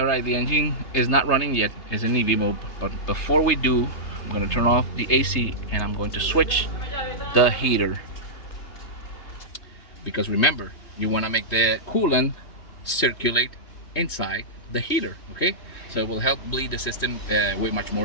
right, the engine is not running yet. It's in EV mode, but before we do, I'm going to turn off the AC and I'm going to switch the heater, because remember, you want to make the coolant circulate inside the heater. Okay, so it will help bleed the system way much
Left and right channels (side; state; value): right; late; 3.2 ms